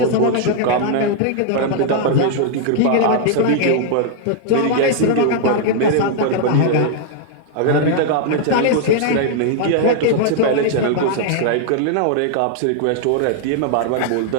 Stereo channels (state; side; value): different; both; correlation -0.01